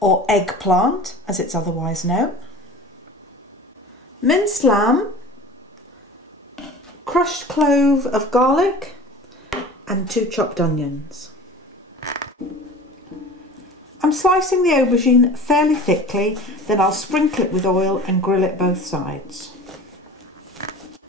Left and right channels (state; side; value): normal; both; correlation 0.39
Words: or eggplant as it's otherwise known, minced lamb, crushed clove of garlic and 2 chopped onions. I'm slicing the aubergine fairly thickly, then I'll sprinkle it with oil and grill it both sides.